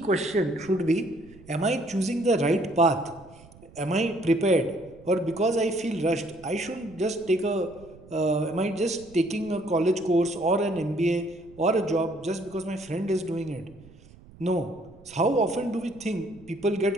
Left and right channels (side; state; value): right; noise; rumble, 23 dB below the sound